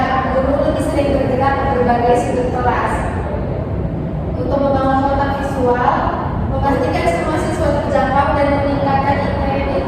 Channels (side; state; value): both; identical; correlation 1.00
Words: guru lebih sering bergerak ke berbagai sudut kelas. Untuk membangun kontak visual, memastikan semua siswa terjangkau dan meningkatkan